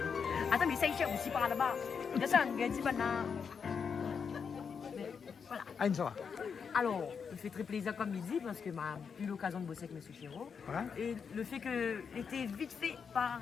Attends, mais ça y est, aussi par là-bas. Descends, dit maintenant. Voilà. Ah, ça va. Alors, il fait très plaisir comme il dit parce que m'a eu l'occasion de bosser avec M. Chiraud. Ouais. Et le fait que était vite fait par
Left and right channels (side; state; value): right; quieter; 6.3 dB